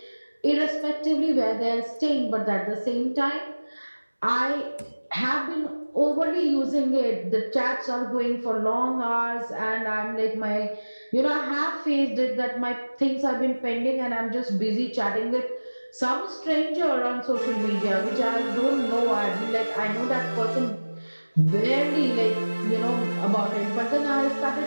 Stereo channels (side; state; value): both; inverted; correlation -1.00